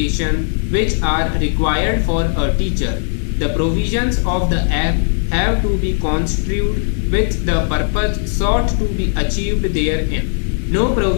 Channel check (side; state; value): right; silent; 68 dB below the other